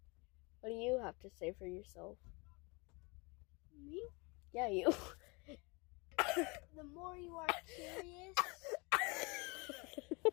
What do you have to say for yourself? Me? Yeah, you. The more you are curious,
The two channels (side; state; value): right; quieter; 28.8 dB